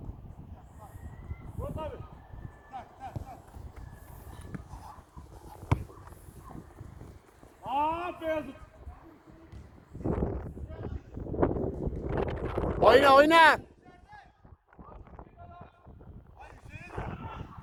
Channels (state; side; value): identical; both; correlation 1.00